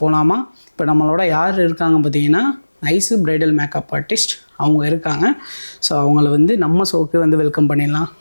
போகலாமா? இப்போ நம்மளோட யார் இருக்காங்க பார்த்தீங்கன்னா, ஐசு பிரைடல் மேக்கப் ஆர்டிஸ்ட் அவங்க இருக்காங்க. ஸோ அவங்கள வந்து நம்ம ஷோக்கு வந்து வெல்கம் பண்ணிடலாம்.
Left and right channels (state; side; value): inverted; both; correlation -1.00